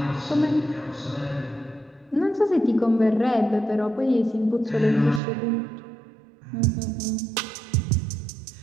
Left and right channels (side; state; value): left; drops out; at 5.2 s